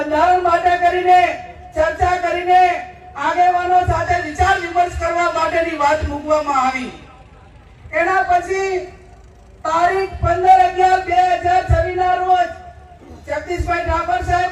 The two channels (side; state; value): both; identical; correlation 1.00